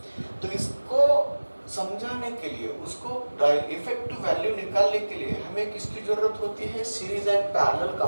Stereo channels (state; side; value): inverted; both; correlation -1.00